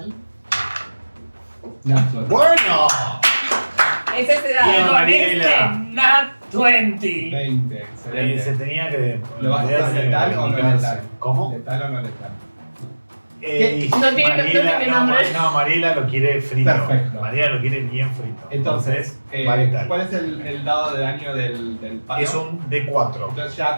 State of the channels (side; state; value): both; inverted; correlation -1.00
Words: Natural. ¡Bueno! Es ese Bien. dado. Con Mariela. este, Nat 20. 20, Se excelente. tenía que. ¿Lo vas a hacer letal o no letal? ¿Cómo? ¿Letal o no letal? No tiene nombre. No, Mariela lo quiere frito. Perfecto. Mariela lo quiere bien frito. Entonces, va letal. ¿cuál es el dado de daño del palo? Es un D4. Entonces ya